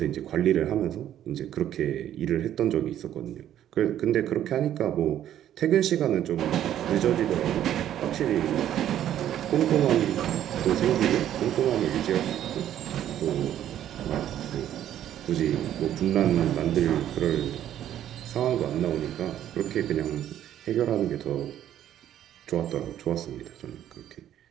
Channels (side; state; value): left; quieter; 11.3 dB